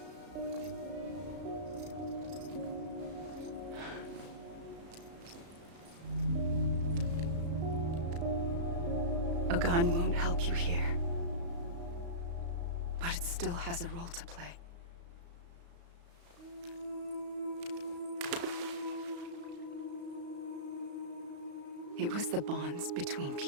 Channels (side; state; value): left; late; 35 ms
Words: A gun won't help you here. But it still has a role to play. It was the bonds between